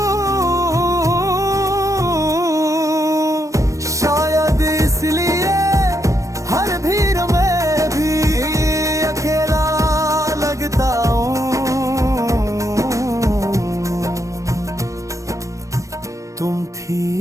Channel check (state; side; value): late; left; 0.15 ms